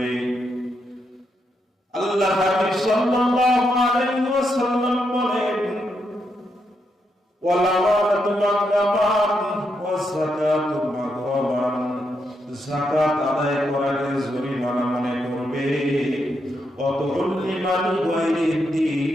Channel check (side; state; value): both; normal; correlation 0.81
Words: আল্লাহ হাবিব সাল্লাল্লাহু আলাইহি ওয়াসাল্লাম বলেন, ওয়াল আমানাতু মাগনামান ওয়াস যাকাতু মাগরামান, যাকাত আদায় করাকে জরিমানা মনে করবে। ওয়াতুল্লিমাল গায়রিদ